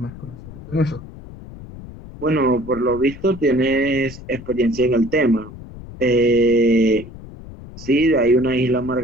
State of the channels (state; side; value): noise; left; rumble, 15 dB below the sound